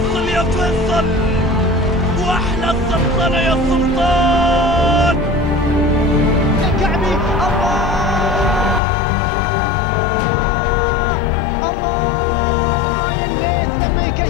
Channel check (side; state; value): right; drops out; at 8.8 s